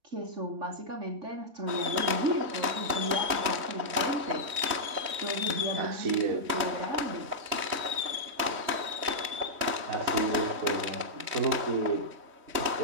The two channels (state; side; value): late; left; 3.2 ms